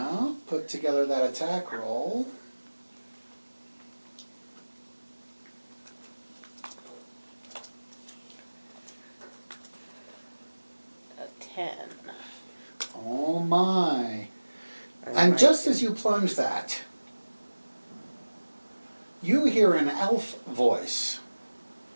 put together that attack roll. A 10. Oh my. And just as you plunge that, you hear an elf voice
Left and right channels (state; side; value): inverted; both; correlation -1.00